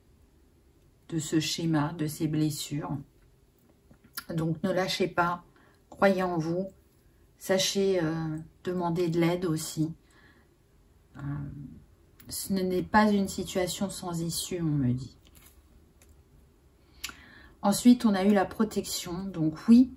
ce schéma, de ces blessures. Donc ne lâchez pas, croyez en vous, sachez demander de l'aide aussi. Ce n'est pas une situation sans issue, on me dit. Ensuite, on a eu la protection. Donc oui,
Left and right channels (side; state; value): both; identical; correlation 1.00